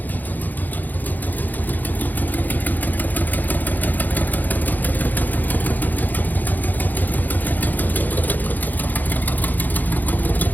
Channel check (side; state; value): right; late; 0.084 ms